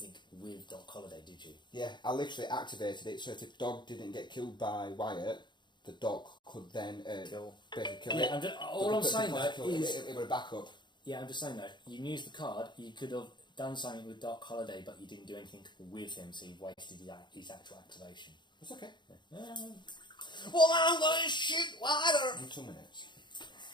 with Doc Holiday, did you? Yeah, I literally activated it so if the dog didn't get killed by Wyatt, the dog could then basically kill it. Yeah, all I'm saying though is it would have back up. yeah, I'm just saying though. You used the card. You could have done something with Doc Holiday, but you didn't do anything with him, so you wasted his actual activation. It's okay. Well, I'm going to shoot wider. In 2 minutes.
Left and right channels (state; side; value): late; right; 0.22 ms